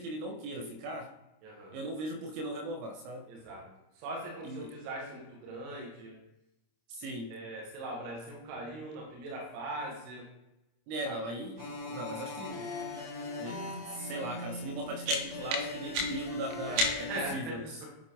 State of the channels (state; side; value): late; left; 26 ms